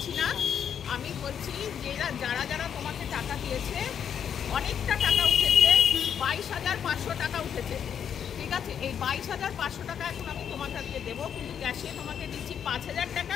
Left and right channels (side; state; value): right; quieter; 8.3 dB